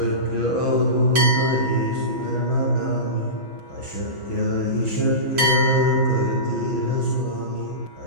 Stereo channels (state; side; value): late; left; 6.1 ms